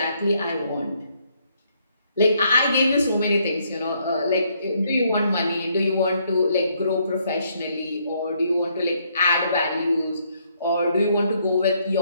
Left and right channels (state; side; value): inverted; both; correlation -0.71